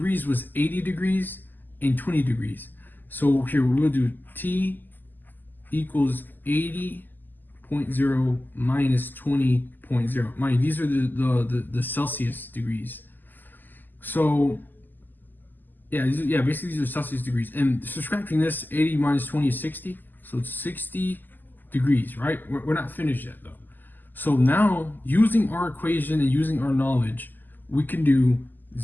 was 80 degrees and 20 degrees. So here we'll do T equals 80.0 minus 20.0. Mind, these are the Celsius degrees. So yeah, basically these are Celsius degrees. And subtracting this, 80 minus 20 is 60. So it's 60 degrees, right? We're not finished yet though. So now, using our equation and using our knowledge, we can do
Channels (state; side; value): late; right; 0.088 ms